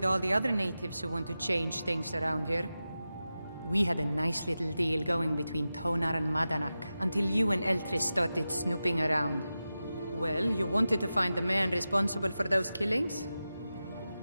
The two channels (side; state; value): both; inverted; correlation -0.93